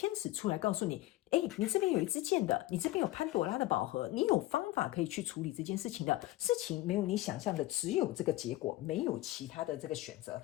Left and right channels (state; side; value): quieter; right; 17.0 dB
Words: 使出来告诉你，你这边有一支箭的，你这边有潘朵拉的宝盒，你有方法可以去处理这件事情的，事情没有你想象的只有这个结果，没有其他的这个选择，